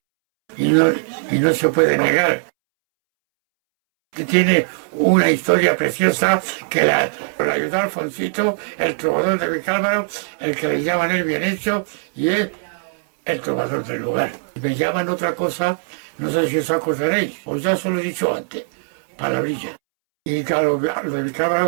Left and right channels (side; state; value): left; silent; 66 dB below the other